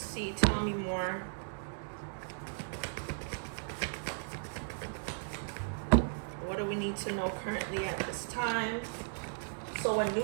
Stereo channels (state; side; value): silent; left; digital silence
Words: see, tell me more. What do we need to know currently at this time? So a